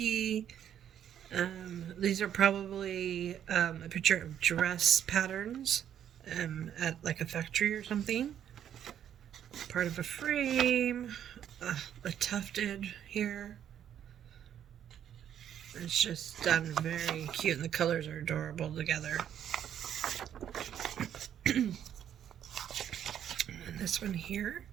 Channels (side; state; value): left; quieter; 9.8 dB